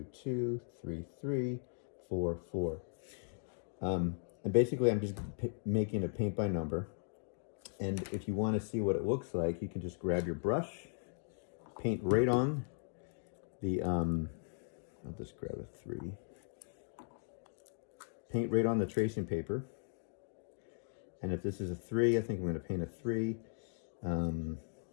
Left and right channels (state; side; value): silent; right; digital silence